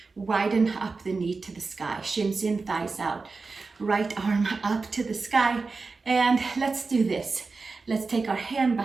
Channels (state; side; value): quieter; left; 4.2 dB